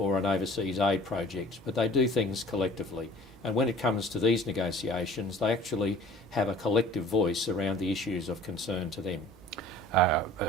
an overseas aid project, but they do things collectively. And when it comes to these negotiations, they actually have a collective voice around the issues of concern to them.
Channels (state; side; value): normal; both; correlation 0.48